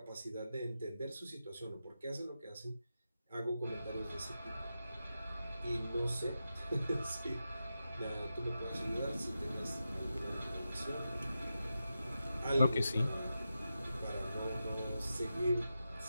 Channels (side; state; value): both; inverted; correlation -0.90